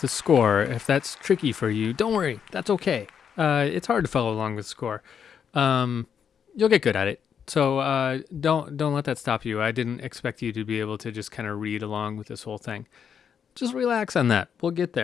the score, if that's tricky for you, don't worry. That's okay. It's hard to follow along with the score. Um, you'll get good at it. So don't let that stop you. I didn't expect you to be able to just kind of read along with this whole thing. Just relax on that. We'll get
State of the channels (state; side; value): quieter; right; 7.6 dB